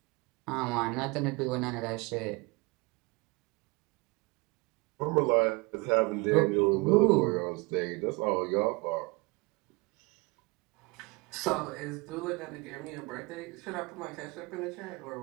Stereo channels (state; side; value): quieter; left; 26.3 dB